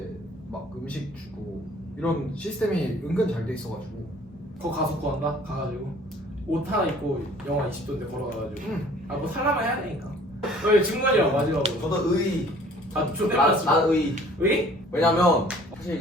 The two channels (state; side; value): normal; both; correlation 0.53